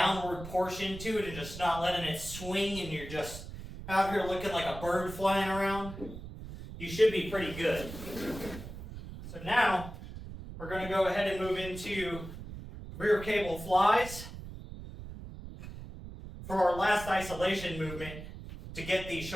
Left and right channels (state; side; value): noise; right; rumble, 11 dB below the sound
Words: portion to it and just not letting it swing and you're just out here looking like a bird flying around, you should be pretty good. So now we're going to go ahead and move into rear cable flies for our last isolation movement to get these